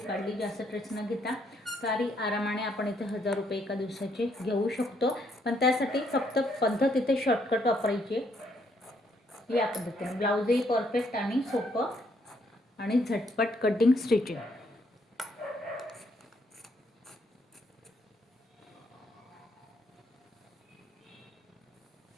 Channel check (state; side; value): normal; both; correlation 0.71